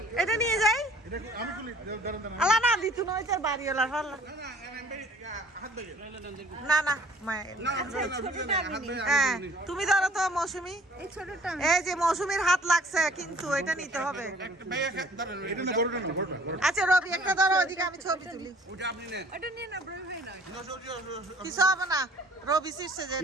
এটা নিয়ে যাই এটা আমি তুলি দাঁড়ান দাঁড়ান আল্লাহ না দিতু না ওইটার বাড়িওয়ালার ফাল্লা না না মায়ের হ্যাঁ তুমি ধরো তো মৌসুমী এই যে মৌসুমীর হাত লাগছে কিন্তু এটা নিতে হবে এটা না বড়টা না বড়টা আচ্ছা রবি একটা ধরো ওদিকে আমি ছবি তুলি এটা নিয়ে না ব্রো ভাই না কিছু হবে না রবি শীর্ষে যে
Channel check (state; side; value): normal; both; correlation 0.53